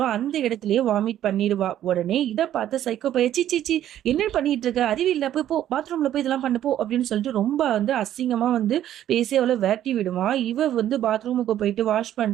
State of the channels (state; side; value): quieter; left; 11.7 dB